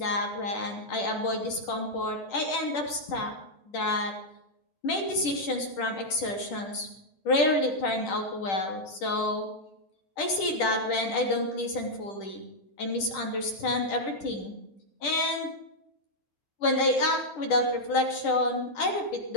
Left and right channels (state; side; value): late; right; 10 ms